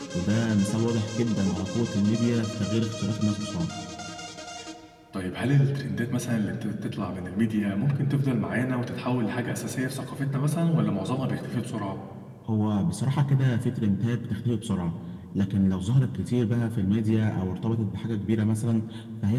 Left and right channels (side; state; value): both; identical; correlation 1.00